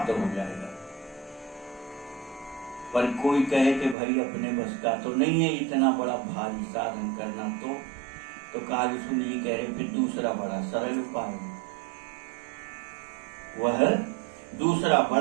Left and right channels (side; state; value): left; drops out; at 4.0 s